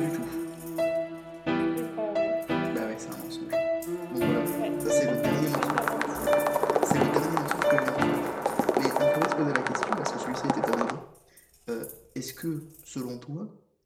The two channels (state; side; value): identical; both; correlation 1.00